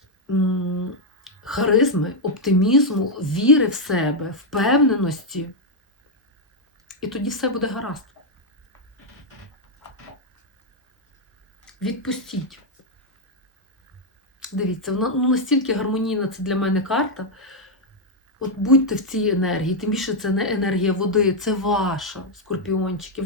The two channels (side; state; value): both; normal; correlation 0.00